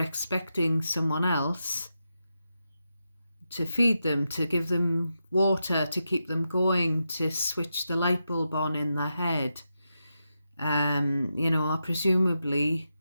someone else to feed them, to give them water, to keep them going, to switch the light bulb on in their head, you know, or presumably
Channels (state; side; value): inverted; both; correlation -0.87